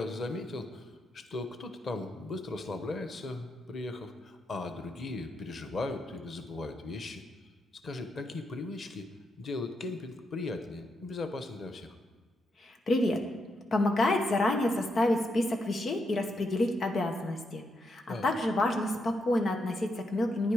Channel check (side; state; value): both; normal; correlation 0.82